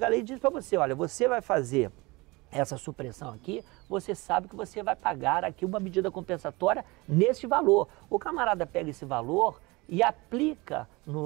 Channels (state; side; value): quieter; left; 23.8 dB